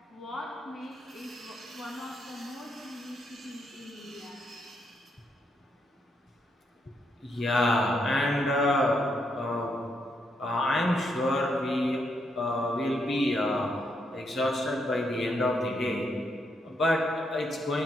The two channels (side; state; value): both; normal; correlation 0.78